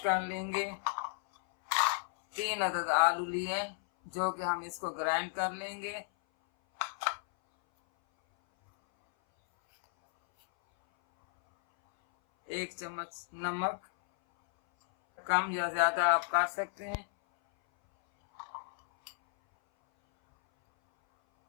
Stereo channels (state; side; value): silent; right; 56 dB below the other